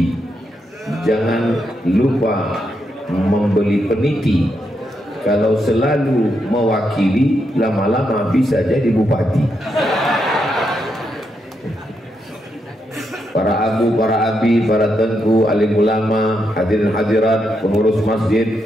jangan lupa membeli peniti. Kalau selalu mewakili, lama-lama bisa jadi bupati. Para abu, para abi, para tengku, alim ulama, hadirin hadirat, pengurus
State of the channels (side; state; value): both; normal; correlation 0.81